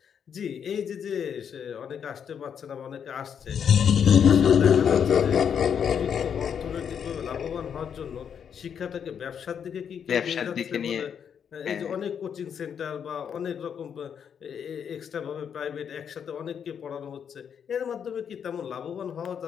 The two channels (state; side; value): quieter; right; 7.8 dB